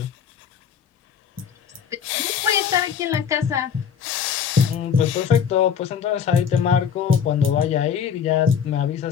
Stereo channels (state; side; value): quieter; right; 7.5 dB